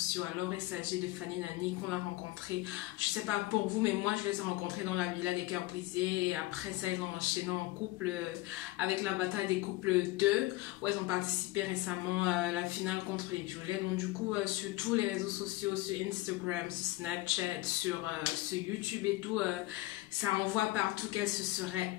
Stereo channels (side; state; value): right; quieter; 18.6 dB